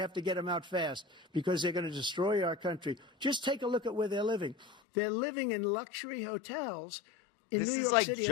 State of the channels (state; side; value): drops out; right; at 4.8 s